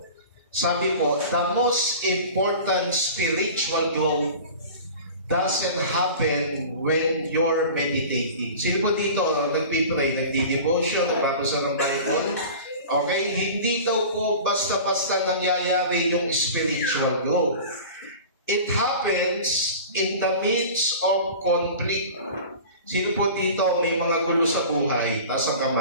Sabi po, the most important spiritual growth doesn't happen when you're meditating. Sino po dito, nagpipray, nagdi-devotion, nagbabasa ng Bible? Okay, hindi daw po basta-basta nangyayari yung spiritual growth. It happens in the midst of conflict. Sino po dito may mga gulo sa buhay, taas ang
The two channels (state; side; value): inverted; both; correlation -0.37